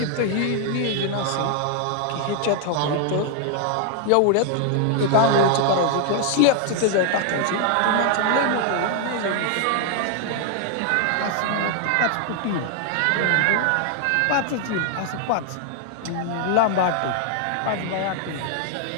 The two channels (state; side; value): different; both; correlation 0.00